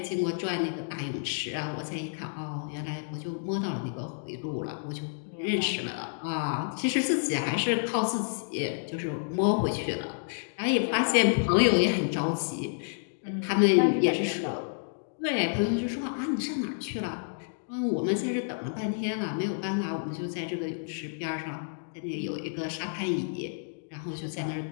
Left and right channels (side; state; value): right; silent; digital silence